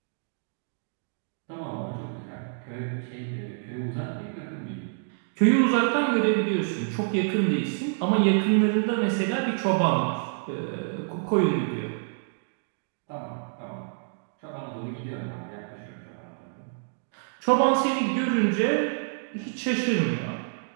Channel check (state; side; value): silent; left; digital silence